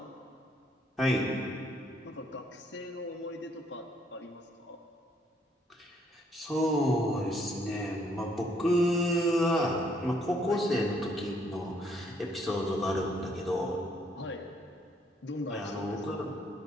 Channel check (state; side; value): normal; both; correlation 0.68